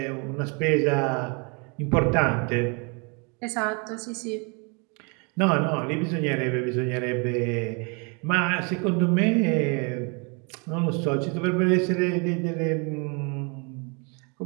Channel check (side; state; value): left; quieter; 33.6 dB